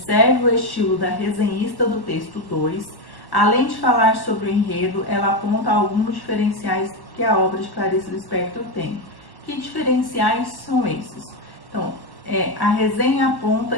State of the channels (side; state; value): right; late; 1.1 ms